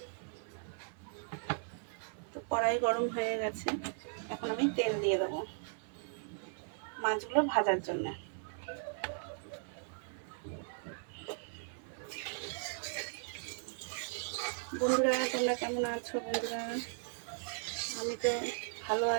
তো কড়াই গরম হয়ে গেছে, এখন আমি তেল দিয়ে দেবো মাছগুলো ভাজার জন্য। বন্ধুরা তোমরা কেমন আছো? বন্ধুরা আমি তো ভালো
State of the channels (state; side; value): silent; left; 53 dB below the other